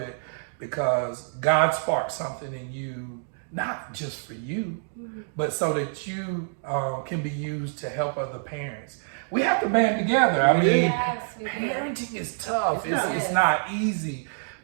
because God sparked something in you, not just for you, but so that you can be used to help other parents. We have to band together. I mean, parenting is tough. It's not easy.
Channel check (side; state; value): left; silent; digital silence